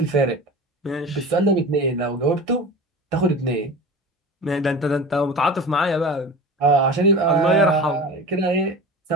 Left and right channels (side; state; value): both; normal; correlation 0.34